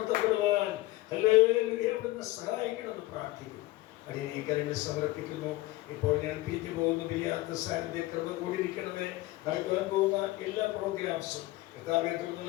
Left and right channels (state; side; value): quieter; right; 18.5 dB